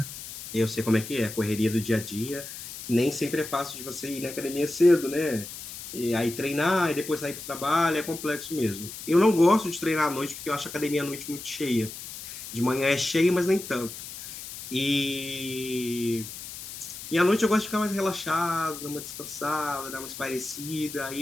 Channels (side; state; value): left; noise; hiss, 11 dB below the sound